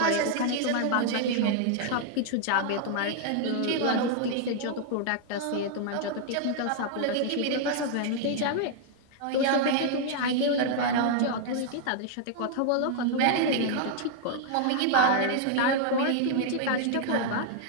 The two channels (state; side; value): different; both; correlation 0.00